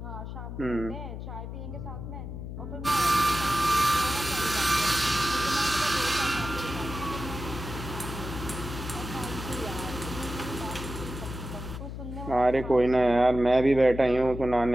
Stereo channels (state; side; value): noise; left; hum, 8 dB below the sound